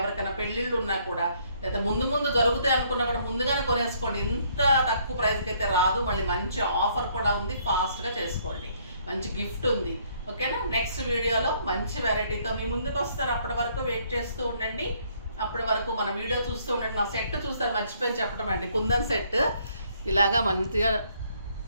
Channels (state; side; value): inverted; both; correlation -0.66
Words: పెళ్ళిళ్ళు ఉన్నా కూడా, లేదా ముందు జరుగుతాయి అనుకున్నా కూడా ముందుగానే కొనేసుకోండి. ఇంత తక్కువ ప్రైస్కి అయితే రాదు. మళ్ళీ మంచి ఆఫర్ కూడా ఉంది, ఫాస్ట్గా చేసుకోండి. మంచి గిఫ్ట్ ఉంది. ఓకేనా? నెక్స్ట్ వీడియోలో మంచి వెరైటీతో మీ ముందుకు వస్తారు. అప్పటి వరకు వెయిట్ చేస్తూ ఉండండి. అప్పటి వరకు మన వీడియో చూస్తూ ఉండండి. నా సెట్ చూస్తారు, మర్చిపోయి చెప్పడం అండి. కుందన్ సెట్ ఇలాగా మంచిగా